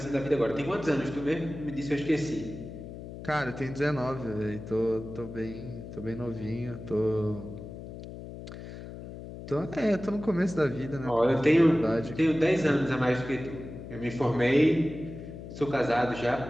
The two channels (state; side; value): noise; left; hum, 11 dB below the sound